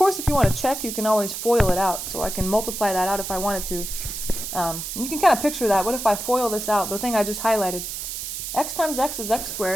if you want to check, you can always FOIL it out. So I can multiply that out if I wanted to. And you can kind of picture that. What if I FOIL this out? The thing I just highlighted. X times x is x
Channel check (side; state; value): right; noise; hiss, 6 dB below the sound